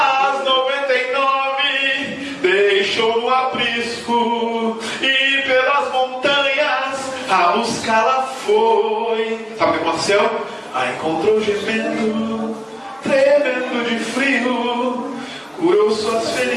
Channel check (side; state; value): both; identical; correlation 1.00